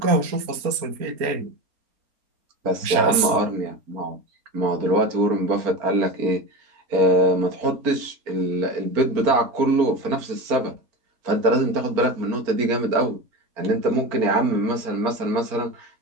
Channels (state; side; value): late; left; 4.3 ms